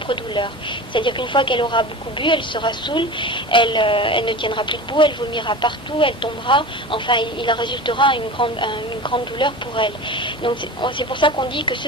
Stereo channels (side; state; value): both; normal; correlation 0.32